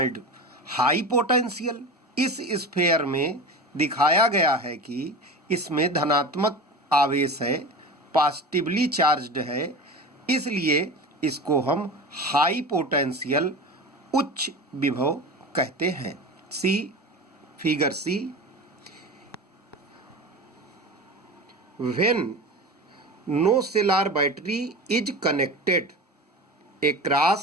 high potential. इस स्फेयर में दिखाया गया है कि इसमें धनात्मक आवेश है, पॉजिटिवली चार्ज्ड है, इसलिए इसको हम हाई पोटेंशियल उच्च विभव कहते हैं। See figure C, when no cell or battery is connected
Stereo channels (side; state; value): both; normal; correlation 0.29